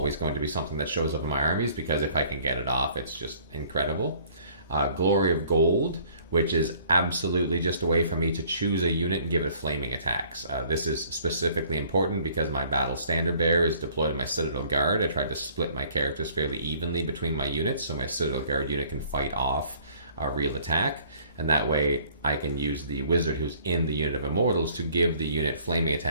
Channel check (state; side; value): inverted; both; correlation -0.57